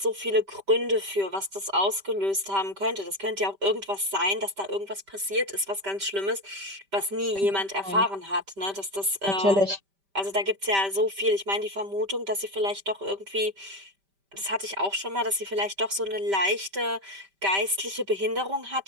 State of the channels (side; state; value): left; late; 5.1 ms